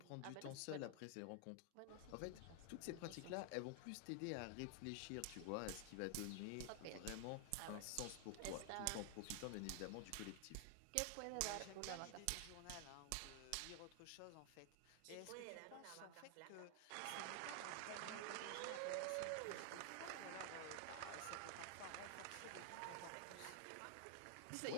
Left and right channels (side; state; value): both; different; correlation 0.00